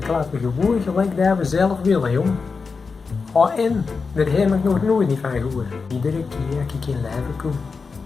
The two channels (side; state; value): right; quieter; 4.8 dB